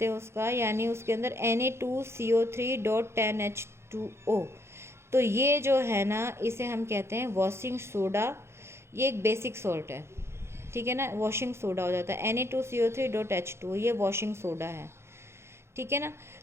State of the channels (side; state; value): left; late; 0.13 ms